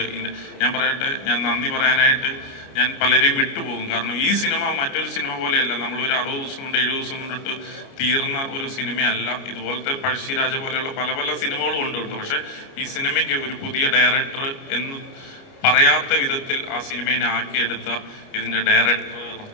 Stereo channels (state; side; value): late; right; 29 ms